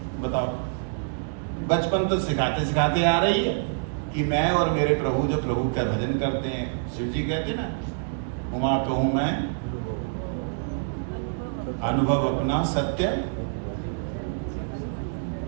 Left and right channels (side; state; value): left; silent; digital silence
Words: बताओ, बचपन तो सिखाते सिखाते आ रही है कि मैं और मेरे प्रभु जो प्रभु का भजन करते हैं, शिव जी कहते ना, उमा कहूँ मैं अनुभव अपना सत्य,